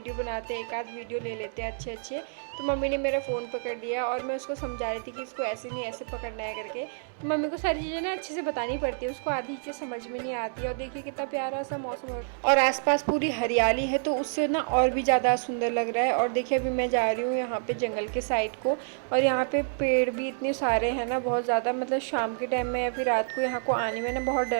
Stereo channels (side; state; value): left; silent; digital silence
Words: बनाते हैं, एक आध वीडियो ले लेते हैं अच्छे। तो मम्मी ने मेरा फ़ोन पकड़ लिया और मैं उसको समझा रही थी कि इसको ऐसे नहीं ऐसे पकड़ना है करके। तो मम्मी को सारी चीज़ें ना अच्छे से बतानी पड़ती है, उसको आधी चीज़ें समझ में नहीं आती है। और देखिए कितना प्यारा सा मौसम है और आसपास पूरी हरियाली है, तो उससे ना और भी ज़्यादा सुंदर लग रहा है। और देखिए अभी मैं जा रही हूँ यहाँ पे जंगल के साइड को, और यहाँ पे पेड़ भी इतने सारे हैं ना, बहुत ज़्यादा। मतलब शाम के टाइम में या फिर रात को यहाँ को आने में ना बहुत